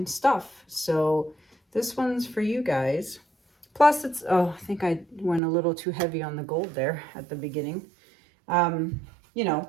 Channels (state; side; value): drops out; left; at 5.4 s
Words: stuff. So this one's for you guys. Plus it's, oh, I think I went a little too heavy on the gold there at the beginning. You know,